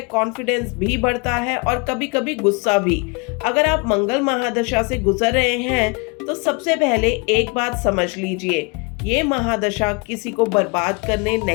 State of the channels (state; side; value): quieter; right; 30.6 dB